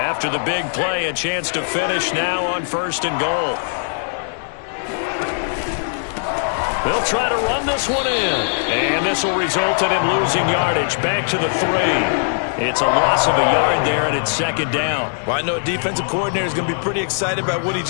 the big play, a chance to finish now on 1st and goal. They'll try to run this one in. And this will result in him losing yardage. Back to the 3. It's a loss of a yard there, and it's 2nd down. Well, I know a defensive coordinator is going to be pretty excited about what he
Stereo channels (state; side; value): silent; right; digital silence